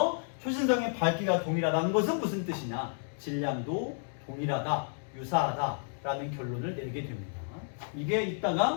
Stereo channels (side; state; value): right; silent; digital silence